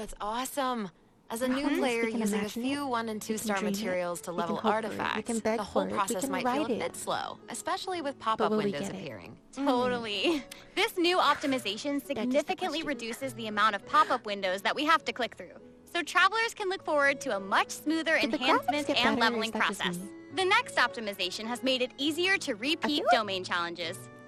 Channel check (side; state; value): both; identical; correlation 1.00